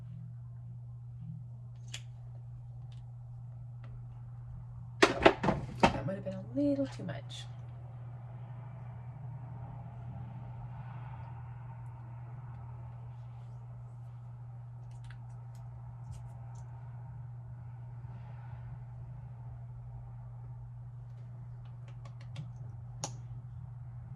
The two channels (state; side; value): identical; both; correlation 1.00